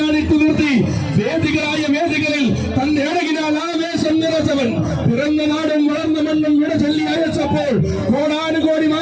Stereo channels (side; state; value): both; identical; correlation 1.00